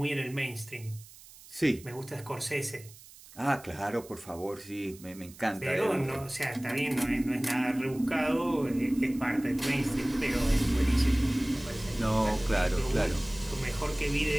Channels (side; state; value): right; noise; hiss, 20 dB below the sound